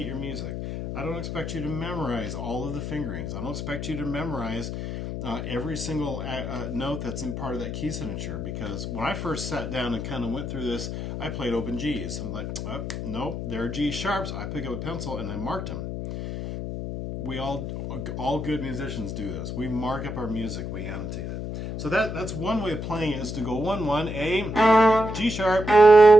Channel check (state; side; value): noise; left; hum, 5 dB below the sound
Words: your music. I don't expect you to memorize all of the fingerings. I don't expect you to memorize every single note that's in part of that key signature, because when I first sat down and kind of went through this, I played open G's. I'm like, oh, nope, there are G sharps. I pick up a pencil and I marked them. We all good musicians do this. We mark up our music, we annotate it. So that's one way of playing it, is to go 1-1, A, G sharp,